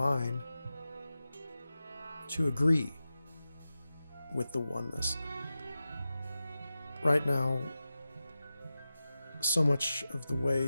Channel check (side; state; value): both; inverted; correlation -0.93